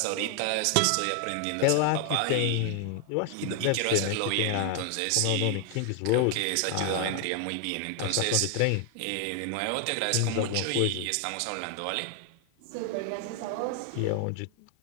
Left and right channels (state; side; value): different; both; correlation 0.00